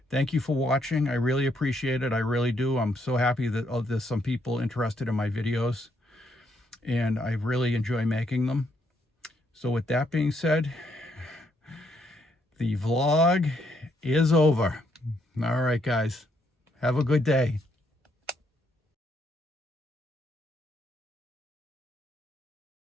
Thank you for watching. I really appreciate it. I really do. I'm so happy that there's some people interested in my videos, and I really enjoy making them. So with that being said, the vlog is over. All right, guys. Have a good day.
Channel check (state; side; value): normal; both; correlation 0.74